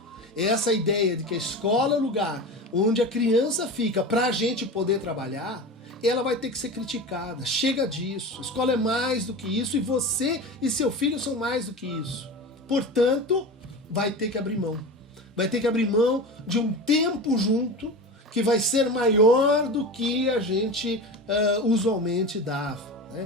Essa ideia de que a escola é o lugar onde a criança fica para a gente poder trabalhar, ela vai ter que ser criticada. Chega disso. A escola é mais do que isso e você e seu filho são mais do que isso. Portanto, vai ter que abrir mão. Vai ter que abrir mão de um tempo junto que vai ser maior do que a gente usualmente dava.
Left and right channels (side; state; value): both; normal; correlation 0.28